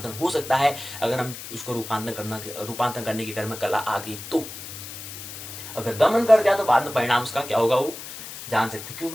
हो सकता है, अगर हम उसको रूपांतरण करने की कर्म कला आ गई तो। अगर दमन कर दिया तो बाद में परिणाम उसका क्या होगा वो जान सकते,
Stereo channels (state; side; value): noise; left; hiss, 11 dB below the sound